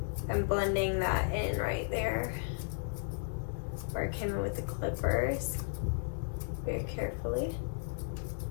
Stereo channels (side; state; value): right; silent; 55 dB below the other